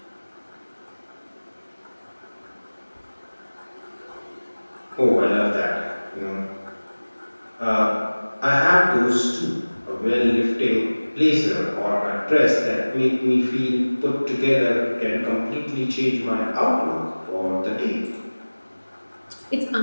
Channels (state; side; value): inverted; both; correlation -1.00